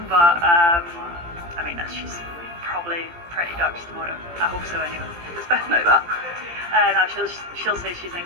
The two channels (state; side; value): late; left; 17 ms